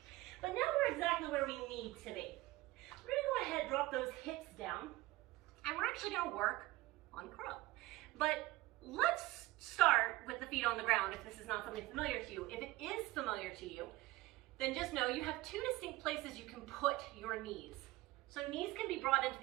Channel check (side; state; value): left; quieter; 18.8 dB